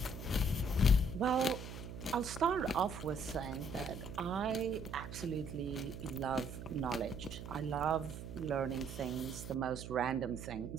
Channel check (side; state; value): right; noise; hum, 10 dB below the sound